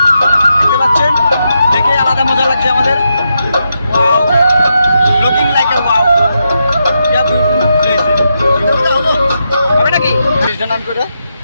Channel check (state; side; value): inverted; both; correlation -0.84